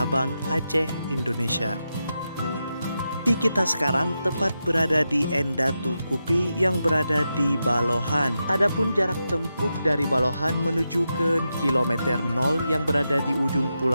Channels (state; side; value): inverted; both; correlation -0.88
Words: Aceh, Indonesia. Kita sekarang tepat berada di Endatu Kupi yang berada di Balohan. Adapun jarak tempuh dari Balohan menuju ke kilometer 0 yang berada di ujung